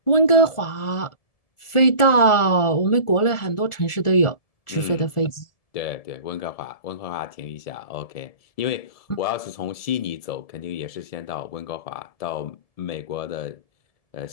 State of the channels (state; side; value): late; right; 1.4 ms